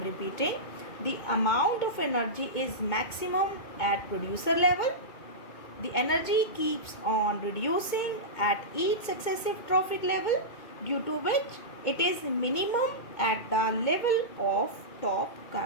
repeating, the amount of energy is maximum at producer level. The energy keeps on reducing at each successive trophic level, due to which it is minimum at the level of top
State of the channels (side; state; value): right; late; 2.2 ms